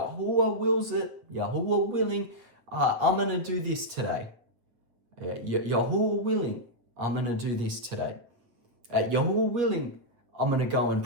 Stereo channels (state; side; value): late; left; 8.5 ms